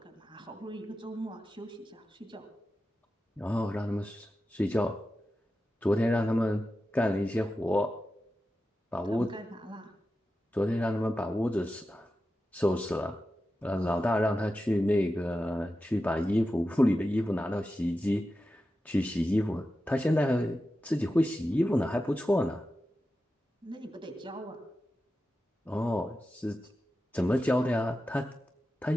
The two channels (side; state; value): both; normal; correlation 0.92